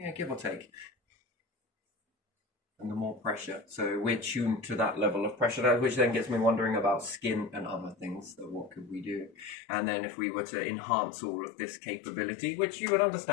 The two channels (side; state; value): right; drops out; at 9.6 s